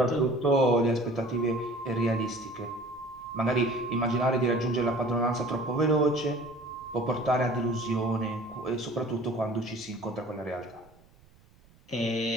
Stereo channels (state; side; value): noise; right; rumble, 28 dB below the sound